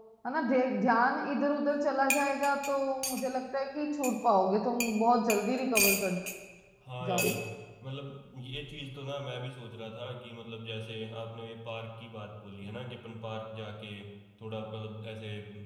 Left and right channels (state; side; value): identical; both; correlation 1.00